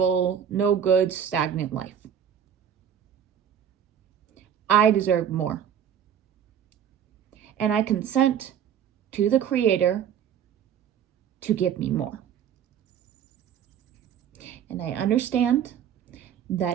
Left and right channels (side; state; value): left; quieter; 8.8 dB